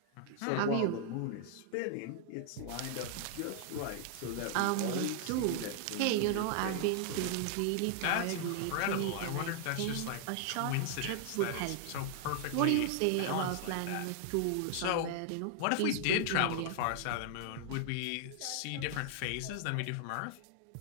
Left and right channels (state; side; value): different; both; correlation 0.00